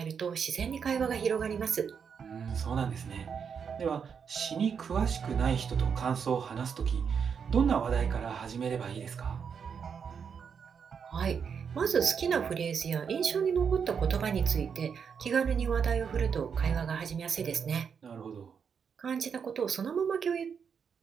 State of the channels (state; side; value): quieter; left; 6.7 dB